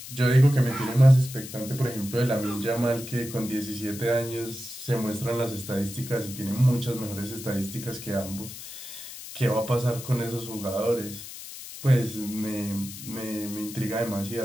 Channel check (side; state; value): left; noise; hiss, 12 dB below the sound